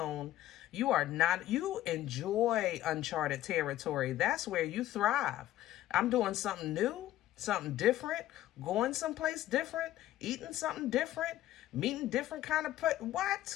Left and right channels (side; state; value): right; quieter; 14.1 dB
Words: You are not, you enjoy uncharted territory. That's where you thrive. I'm doing something new, something different, going someplace different, eating something different, meeting different kind of what?